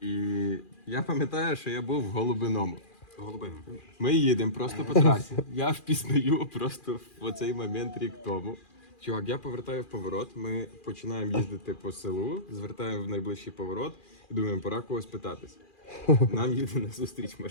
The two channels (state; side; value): late; right; 2.4 ms